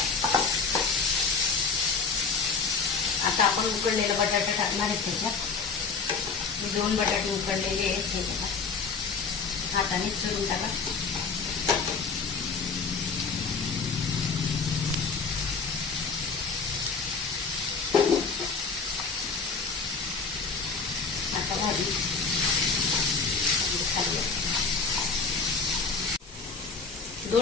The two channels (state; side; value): quieter; right; 4.8 dB